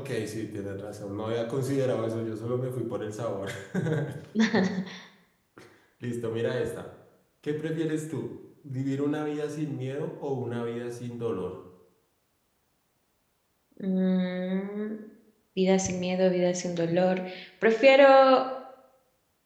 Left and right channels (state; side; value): identical; both; correlation 1.00